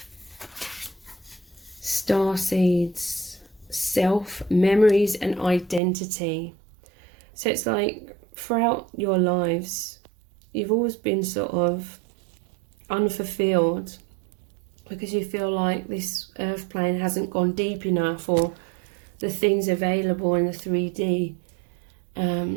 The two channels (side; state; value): left; drops out; at 5.8 s